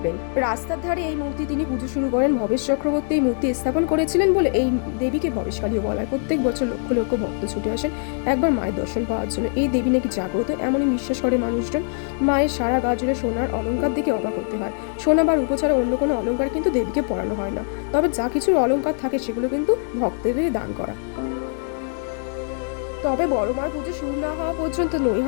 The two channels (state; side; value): silent; right; 64 dB below the other